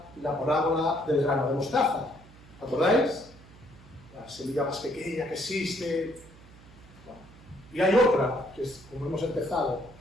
la parábola del grano de mostaza. ¿Acordáis? La semilla más pequeña que existe. Bueno, y hay otra, que es como hemos empezado,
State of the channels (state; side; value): noise; right; hum, 22 dB below the sound